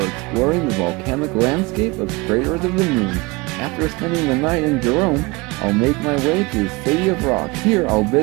exploring the volcanic landscape of Craters of the Moon. After spending the night in Jerome, I'll make my way to the City of Rock. Here I'll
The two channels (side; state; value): left; quieter; 24.5 dB